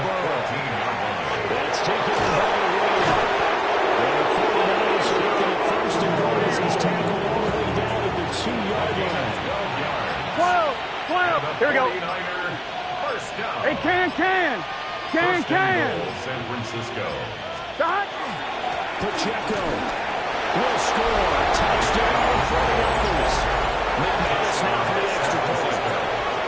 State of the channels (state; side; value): identical; both; correlation 1.00